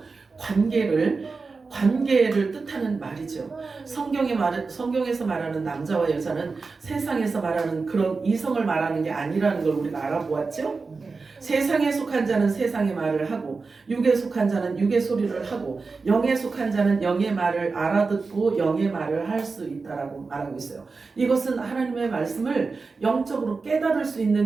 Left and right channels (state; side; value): quieter; left; 4.3 dB